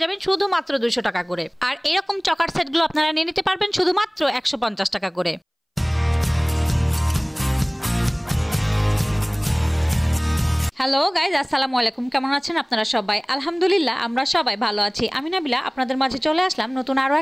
যাবেন শুধুমাত্র 200 টাকা করে। আর এরকম চকার সেটগুলো আপনারা নিয়ে নিতে পারবেন শুধুমাত্র 150 টাকা করে। হ্যালো গাইজ, আসসালামু আলাইকুম। কেমন আছেন আপনারা সবাই? আলহামদুলিল্লাহ আমরা সবাই ভালো আছি। আমি নাবিলা আপনাদের মাঝে চলে আসলাম নতুন আরো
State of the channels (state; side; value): identical; both; correlation 1.00